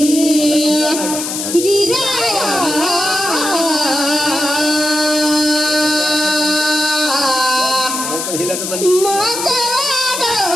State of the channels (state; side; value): noise; left; hiss, 4 dB below the sound